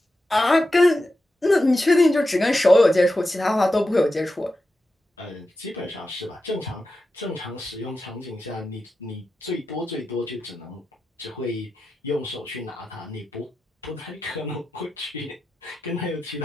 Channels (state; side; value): normal; both; correlation 0.90